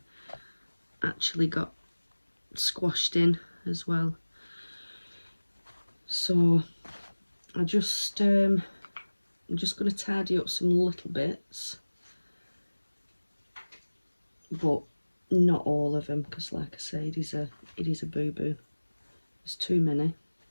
actually got squashed in as well. So I'm just going to tidy up some little bits, but not all of them, because like I say, it is a boo-boo. There's too many.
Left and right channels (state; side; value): inverted; both; correlation -1.00